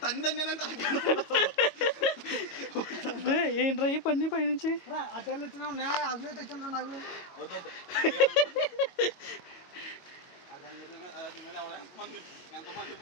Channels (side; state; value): right; late; 22 ms